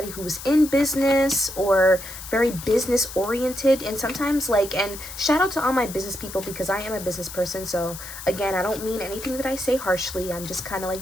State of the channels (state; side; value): noise; left; hiss, 12 dB below the sound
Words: who was in business or very business oriented. And sometimes, like, and shout out to all my business people, because I am a business person. So again, I don't mean anything that I say harshly. I'm just kind of like